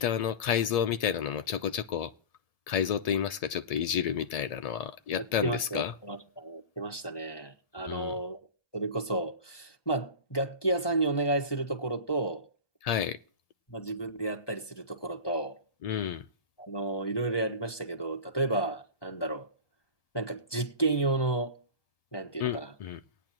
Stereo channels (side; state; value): right; late; 1.7 ms